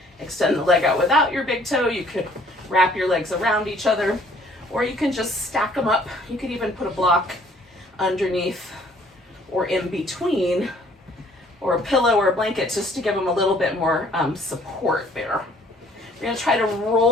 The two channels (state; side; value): normal; both; correlation 0.59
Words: extend the leg out without your big toe. You could wrap your legs around each other, or you can just stack them up. You could even put a block underneath or in between, or a pillow or a blanket just to give them a little bit more support there. We're going to try to